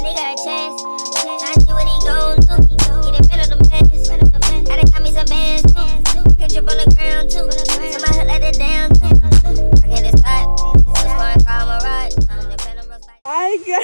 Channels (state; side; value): inverted; both; correlation -1.00